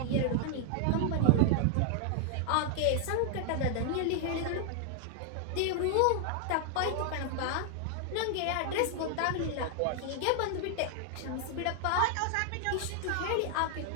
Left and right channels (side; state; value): both; different; correlation 0.00